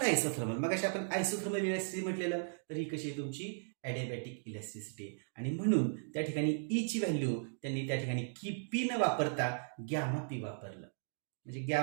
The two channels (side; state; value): left; silent; digital silence